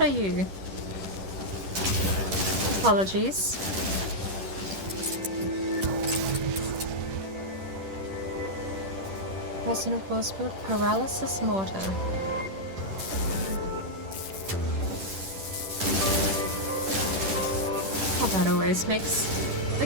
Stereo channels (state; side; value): late; left; 10 ms